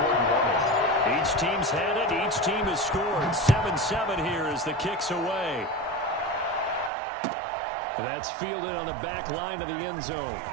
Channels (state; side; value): drops out; left; at 6.9 s